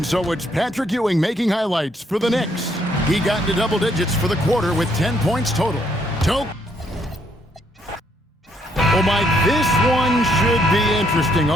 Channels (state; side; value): normal; both; correlation 0.71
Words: so it's Patrick Ewing making highlights for the Knicks. He got into double digits for the quarter with 10 points total. Oh, Mike, this one should be interesting.